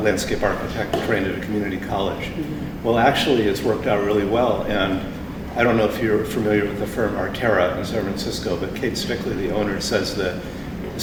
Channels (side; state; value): both; identical; correlation 1.00